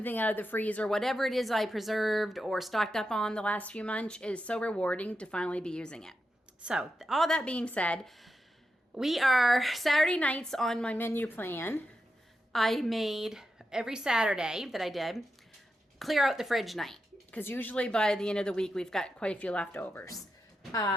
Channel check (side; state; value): both; normal; correlation 0.88